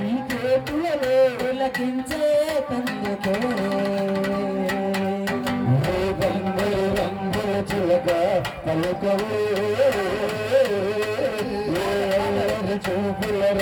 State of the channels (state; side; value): identical; both; correlation 1.00